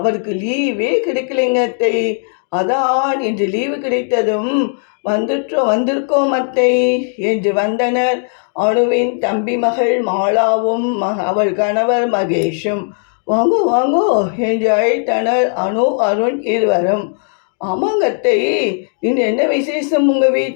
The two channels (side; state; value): right; silent; 69 dB below the other